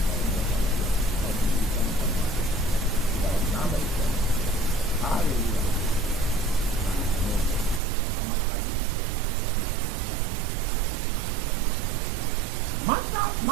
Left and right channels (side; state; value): left; drops out; at 7.8 s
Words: Haleluya. Amin. Selamat pagi, selamat 13 Mantap,